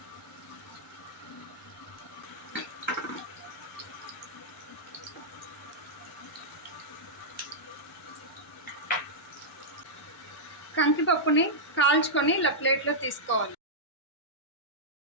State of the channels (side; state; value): both; normal; correlation -0.09